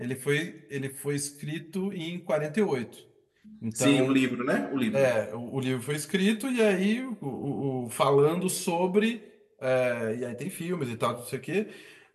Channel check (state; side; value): identical; both; correlation 1.00